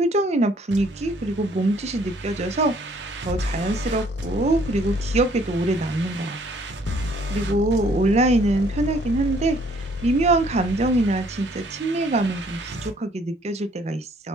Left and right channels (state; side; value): normal; both; correlation 0.62